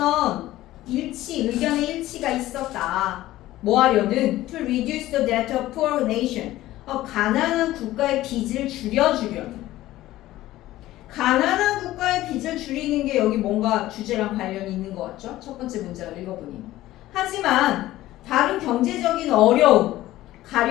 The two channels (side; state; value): right; quieter; 15.7 dB